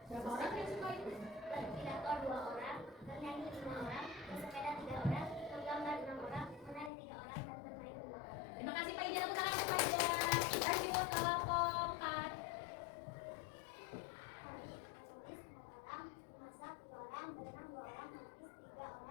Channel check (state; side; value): drops out; right; at 6.9 s